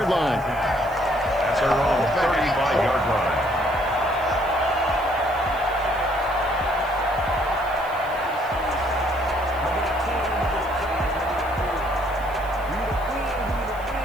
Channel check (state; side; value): noise; right; hiss, 24 dB below the sound